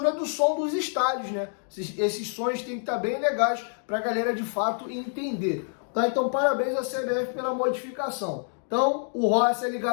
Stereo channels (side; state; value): right; silent; digital silence